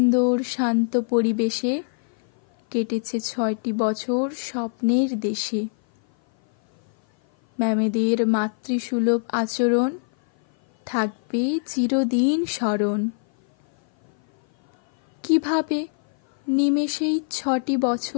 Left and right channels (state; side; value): silent; right; 56 dB below the other